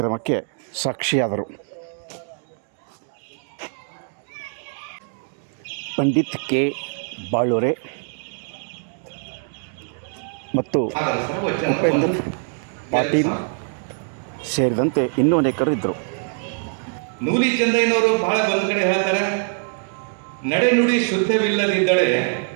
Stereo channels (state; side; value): silent; left; 57 dB below the other